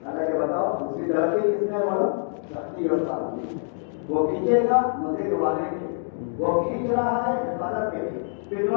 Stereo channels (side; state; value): right; silent; digital silence